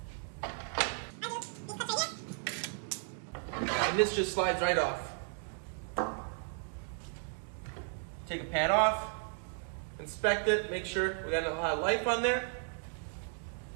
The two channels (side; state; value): left; silent; 55 dB below the other